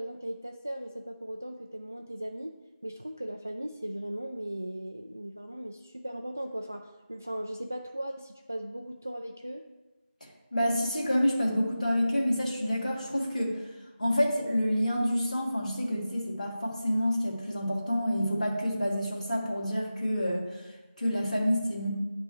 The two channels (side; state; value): both; inverted; correlation -0.94